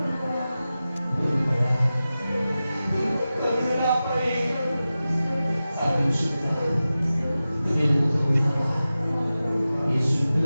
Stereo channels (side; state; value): both; inverted; correlation -0.94